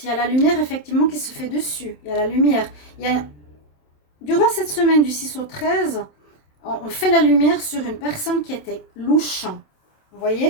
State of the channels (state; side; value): late; right; 27 ms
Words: il y a la lumière effectivement qui se fait dessus. Il y a la lumière. Durant cette semaine du 6 au 13, on fait la lumière sur une personne qui était louche. Vous